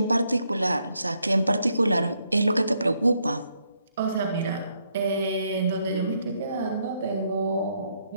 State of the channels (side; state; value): both; inverted; correlation -0.75